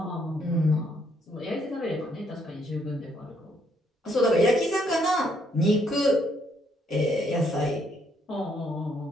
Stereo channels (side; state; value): both; normal; correlation 0.71